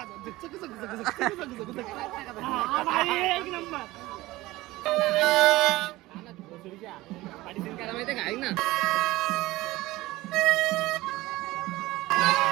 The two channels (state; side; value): quieter; left; 18.6 dB